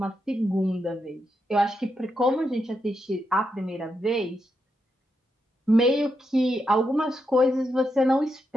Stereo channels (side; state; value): both; normal; correlation 0.83